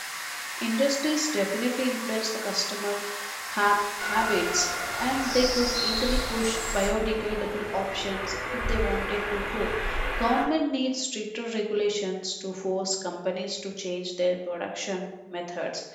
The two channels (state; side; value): identical; both; correlation 1.00